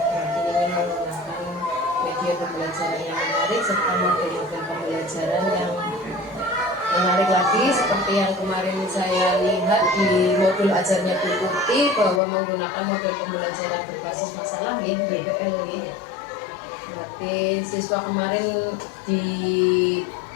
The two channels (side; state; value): right; drops out; at 12.2 s